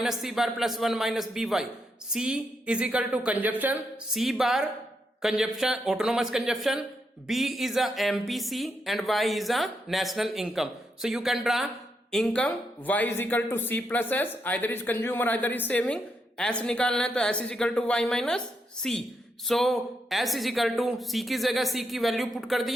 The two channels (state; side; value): normal; both; correlation 0.81